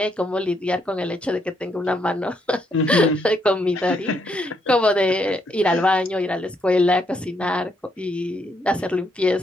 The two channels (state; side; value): normal; both; correlation 0.75